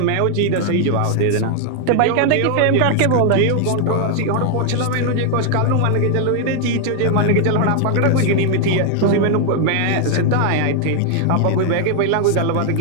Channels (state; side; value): different; both; correlation 0.00